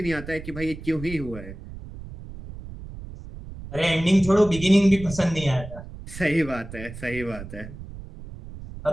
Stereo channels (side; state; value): right; noise; rumble, 13 dB below the sound